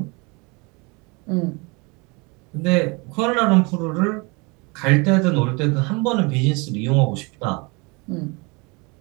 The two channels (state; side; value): quieter; left; 28.6 dB